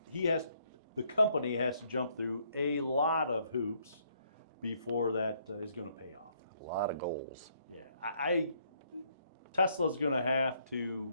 the company has to jump through a lot of hoops before that is going to pay off. A lot of goals. Yeah, Tesla's going to have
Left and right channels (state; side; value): inverted; both; correlation -0.69